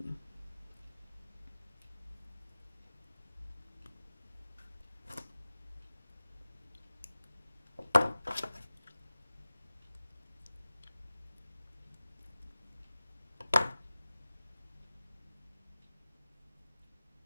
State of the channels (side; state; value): both; inverted; correlation -0.97